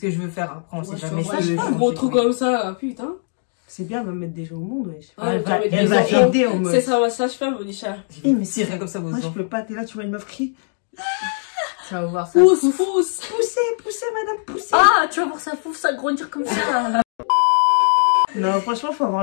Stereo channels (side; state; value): right; silent; 63 dB below the other